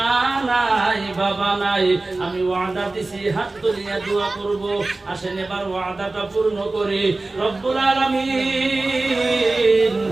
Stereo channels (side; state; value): left; quieter; 3.2 dB